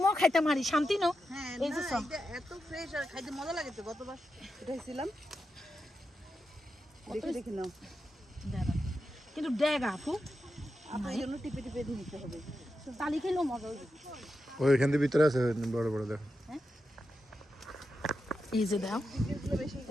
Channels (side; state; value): both; normal; correlation 0.88